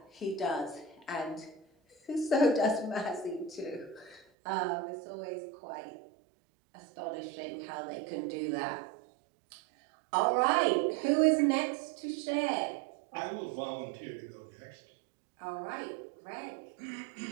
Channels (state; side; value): drops out; left; at 4.2 s